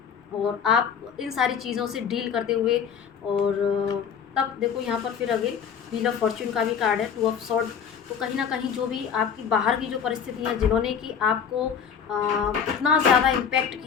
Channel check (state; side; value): quieter; right; 7.3 dB